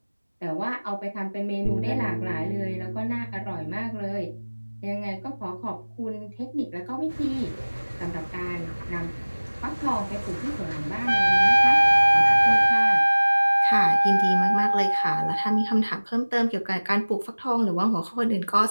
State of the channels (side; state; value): both; inverted; correlation -1.00